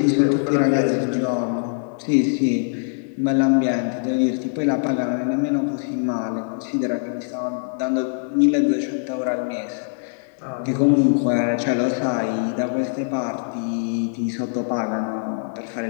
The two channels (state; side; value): silent; right; digital silence